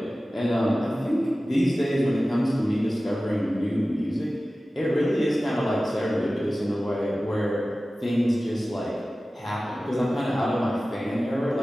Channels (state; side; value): normal; both; correlation 0.96